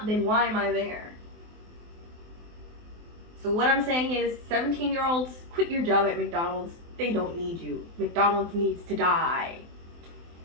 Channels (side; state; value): left; late; 24 ms